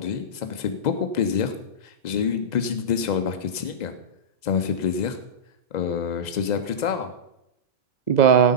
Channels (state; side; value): late; right; 2.0 ms